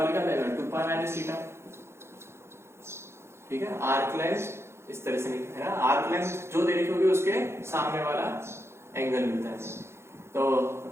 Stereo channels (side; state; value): left; late; 0.13 ms